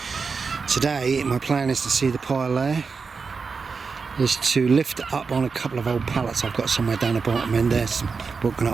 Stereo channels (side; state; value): left; quieter; 5.0 dB